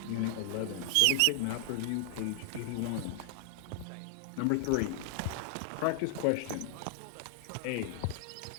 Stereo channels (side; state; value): both; different; correlation 0.00